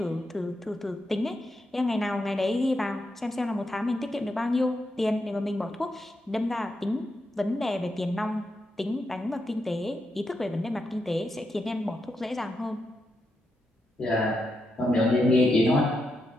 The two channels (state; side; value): normal; both; correlation 0.84